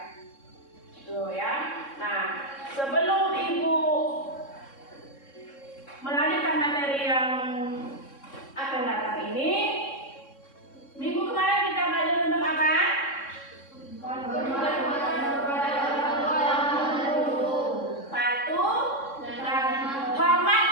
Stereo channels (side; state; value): right; late; 3.6 ms